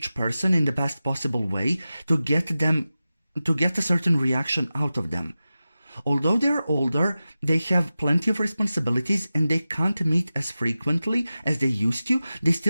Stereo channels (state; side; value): inverted; both; correlation -0.94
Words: person in the best possible way to get a certain reaction out of them. Although they're older, they have plenty of responsibilities and they can't meet as frequently as they used to. They